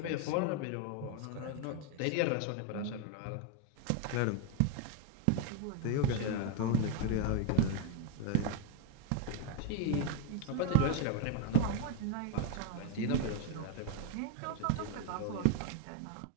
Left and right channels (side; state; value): both; different; correlation 0.01